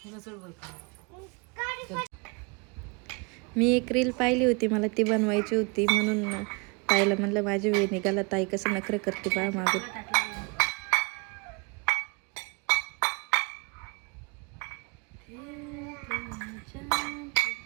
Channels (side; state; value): left; quieter; 31.8 dB